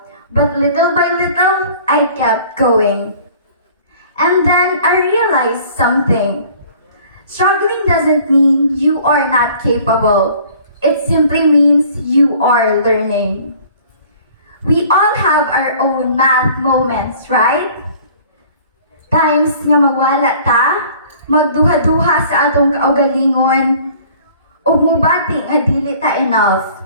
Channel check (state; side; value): inverted; both; correlation -0.51